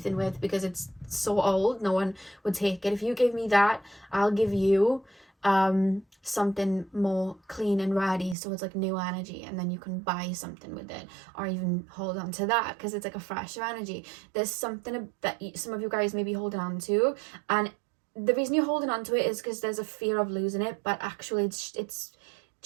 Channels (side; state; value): left; drops out; at 8.3 s